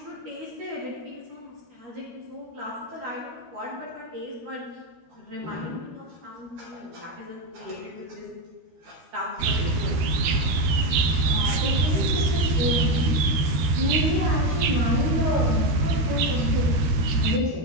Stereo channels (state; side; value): late; left; 13 ms